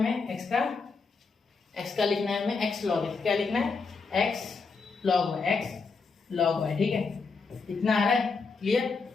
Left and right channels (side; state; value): right; quieter; 4.6 dB